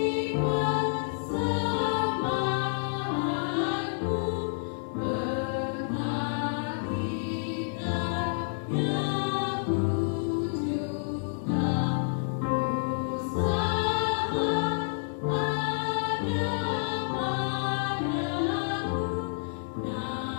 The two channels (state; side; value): silent; right; 59 dB below the other